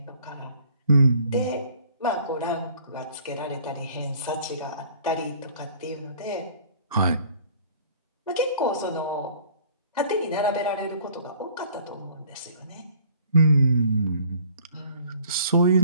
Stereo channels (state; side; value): inverted; both; correlation -0.55